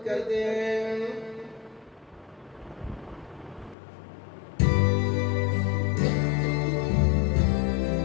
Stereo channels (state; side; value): drops out; right; at 3.8 s